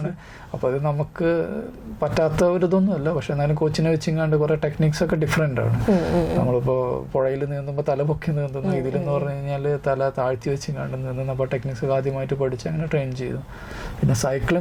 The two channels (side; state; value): both; identical; correlation 1.00